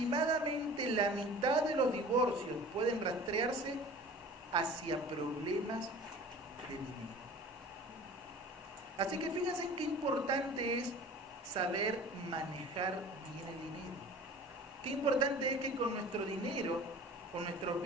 la mitad de los divorcios pueden rastrearse hacia problemas de dinero. Así que fíjense en qué importante es saber manejar bien el dinero. Qué importante es que con nuestro dinero, con nuestros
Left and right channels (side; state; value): both; normal; correlation 0.42